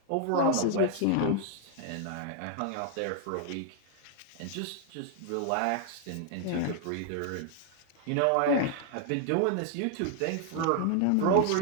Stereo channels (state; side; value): different; both; correlation 0.00